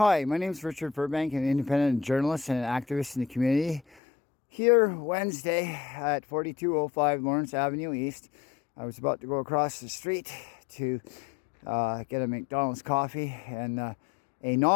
my name is Richard Burbank, an independent journalist and an activist in the community. Here Wednesday at 4205 Lawrence Avenue East, I was about to go across the street to get a McDonald's coffee, and a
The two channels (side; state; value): right; drops out; at 3.8 s